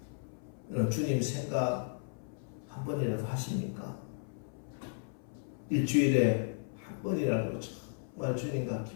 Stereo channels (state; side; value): silent; right; 55 dB below the other